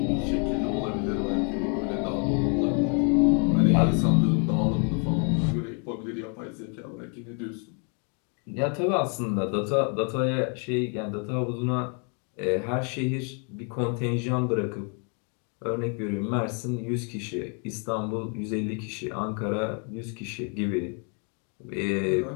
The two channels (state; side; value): quieter; right; 39.3 dB